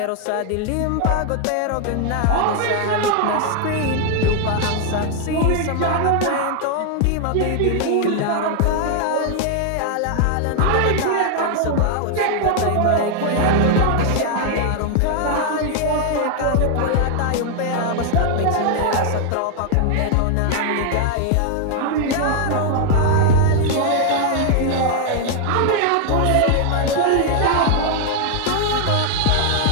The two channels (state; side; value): different; both; correlation 0.00